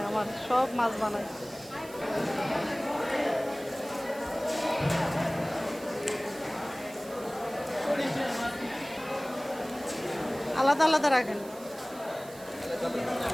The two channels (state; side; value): noise; right; hiss, 19 dB below the sound